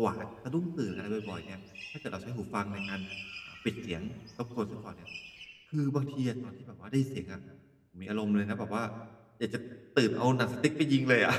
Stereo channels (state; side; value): identical; both; correlation 1.00